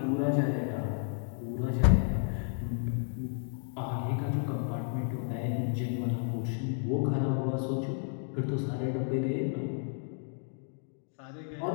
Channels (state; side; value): silent; right; 56 dB below the other